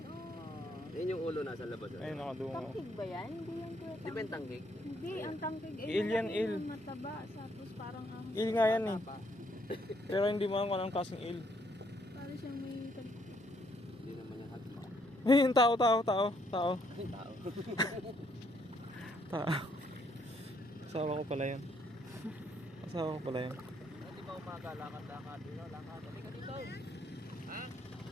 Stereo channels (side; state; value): both; normal; correlation 0.70